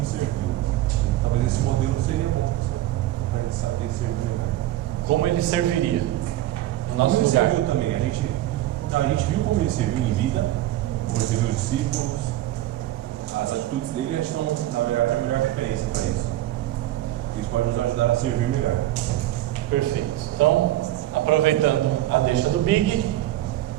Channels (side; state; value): left; quieter; 14.7 dB